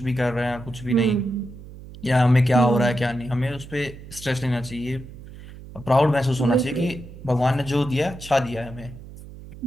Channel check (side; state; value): right; noise; hum, 16 dB below the sound